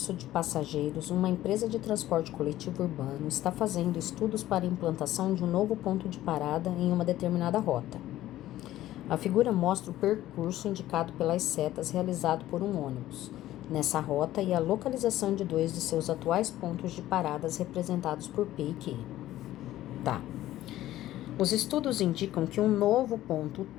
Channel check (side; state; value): right; quieter; 14.4 dB